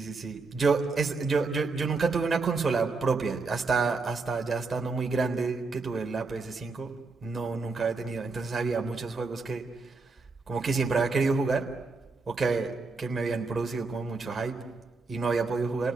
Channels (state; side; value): quieter; left; 4.0 dB